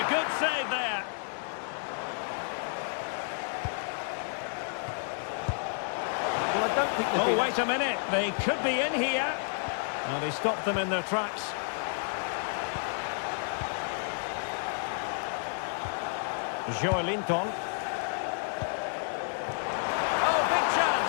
good save there. Well, I don't think Oh, wait a minute. They could be in here. Well, they stopped them in their tracks. Joelinton. Oh, big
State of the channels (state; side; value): silent; right; 57 dB below the other